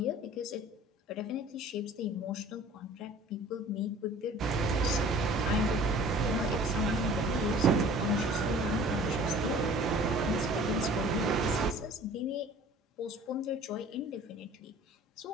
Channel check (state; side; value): normal; both; correlation 0.48